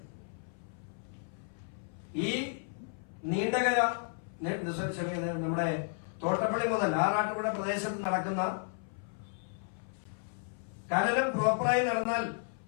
ഈ നീണ്ടകര നമ്മുടെ തോട്ടപ്പള്ളി മുതൽ ആറാട്ടുപുഴ പ്രദേശത്ത് നടക്കുന്ന ഖനനം പ്രോപ്പറായി നടന്നാൽ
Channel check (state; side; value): silent; right; 56 dB below the other